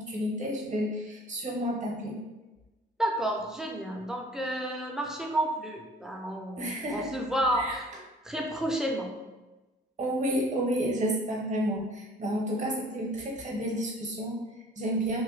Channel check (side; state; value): both; normal; correlation 0.51